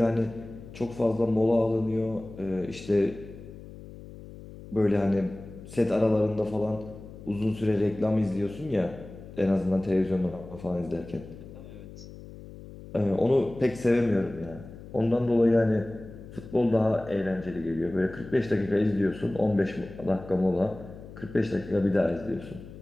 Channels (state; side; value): noise; left; hum, 16 dB below the sound